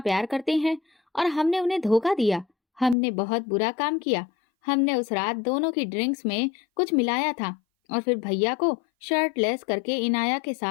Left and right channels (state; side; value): drops out; right; at 3.0 s